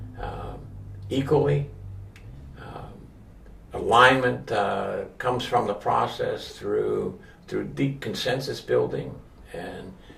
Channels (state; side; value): identical; both; correlation 1.00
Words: equally. Alignment comes from the process through deep consensus building